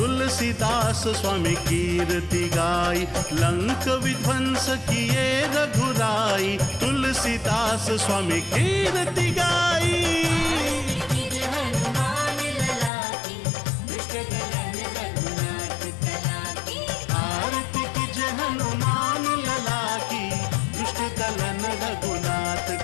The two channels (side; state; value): right; drops out; at 12.9 s